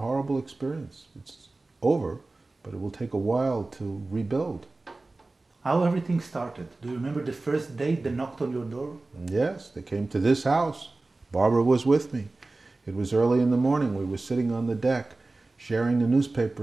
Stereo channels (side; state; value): left; quieter; 3.2 dB